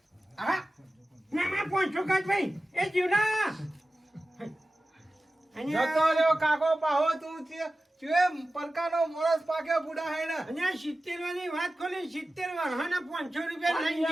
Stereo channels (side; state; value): both; normal; correlation 0.95